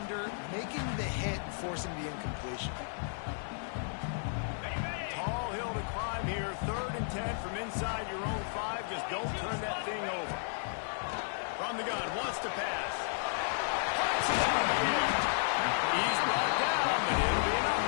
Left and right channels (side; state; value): right; silent; digital silence